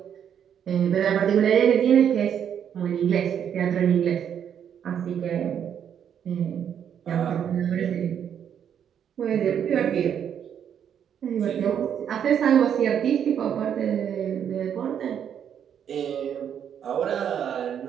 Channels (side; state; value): left; quieter; 8.7 dB